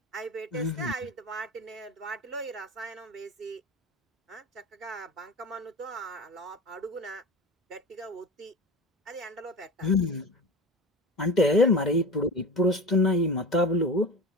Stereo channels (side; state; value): both; normal; correlation 0.32